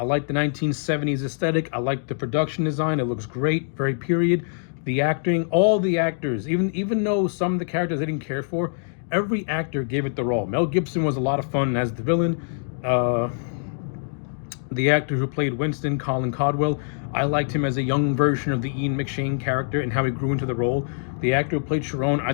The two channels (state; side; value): silent; right; digital silence